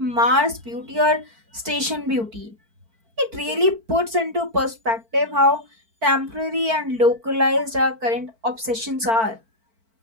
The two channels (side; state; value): left; late; 4.5 ms